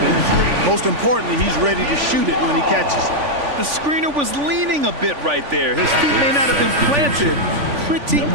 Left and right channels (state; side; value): late; left; 3.5 ms